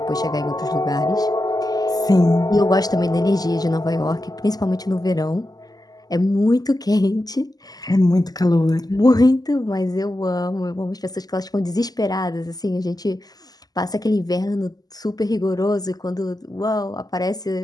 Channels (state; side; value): late; right; 0.18 ms